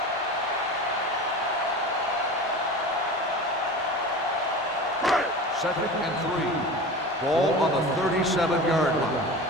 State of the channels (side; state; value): both; normal; correlation 0.33